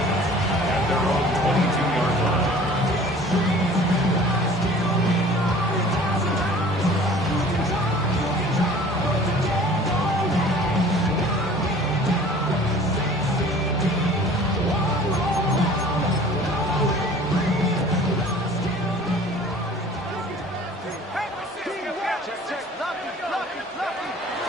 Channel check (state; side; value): normal; both; correlation 0.47